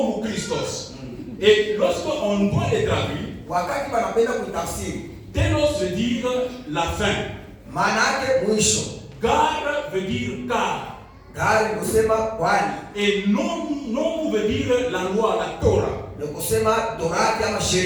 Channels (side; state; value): both; identical; correlation 1.00